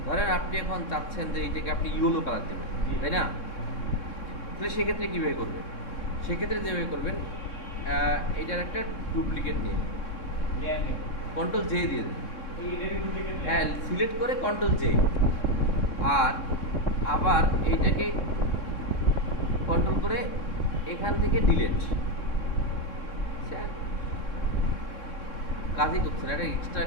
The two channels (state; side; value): late; right; 3.6 ms